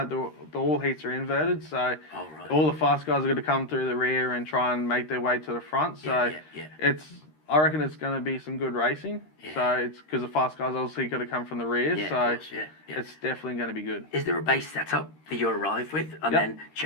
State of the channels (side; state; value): right; late; 13 ms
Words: the all heats are inverted, so all the fast guys are going to come through the rear and try and make their way to the front. So I reckon it's going to be some good racing. So it's because the fast guys obviously got to come from the rear, so it's definitely going to be good. Is there a base setup that you arrive with and then